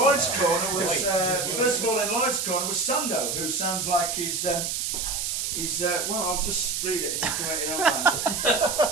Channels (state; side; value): noise; right; hiss, 2 dB below the sound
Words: corner was, first of all, in Lloyd's corner was Sando, who sounds like he's well, I'll just read it and you can write your own man.